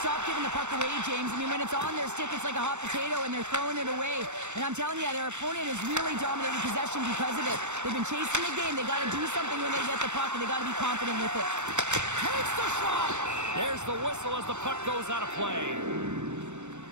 stop giving the puck away, James. I mean, when it's on their stick, it's like a hot potato, and they're throwing it away. And I'm telling you, their opponent has really dominated possession because of it. They've been chasing the game. They got to do something when they get the puck, and they got to be confident with it. Takes the shot! There's the whistle as the puck goes out of play.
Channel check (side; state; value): left; late; 0.83 ms